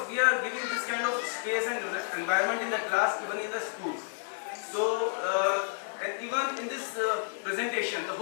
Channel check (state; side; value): silent; right; 57 dB below the other